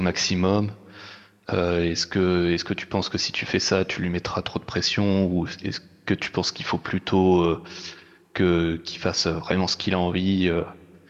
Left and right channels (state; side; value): identical; both; correlation 1.00